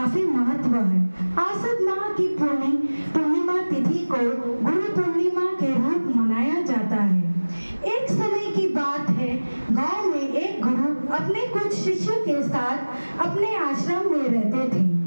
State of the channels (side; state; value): both; inverted; correlation -1.00